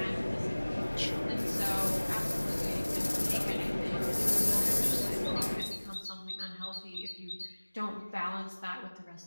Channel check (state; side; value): inverted; both; correlation -1.00